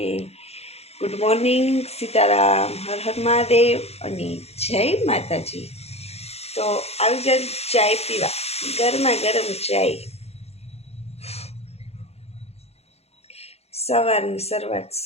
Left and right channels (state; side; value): late; right; 0.30 ms